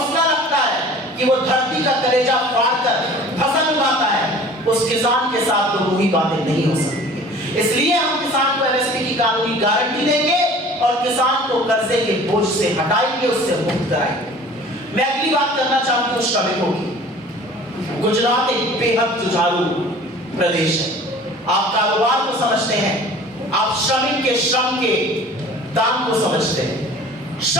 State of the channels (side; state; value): both; normal; correlation 0.45